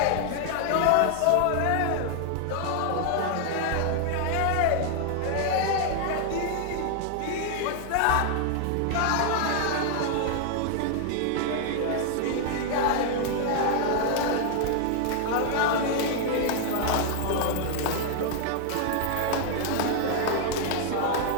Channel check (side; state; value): both; different; correlation 0.00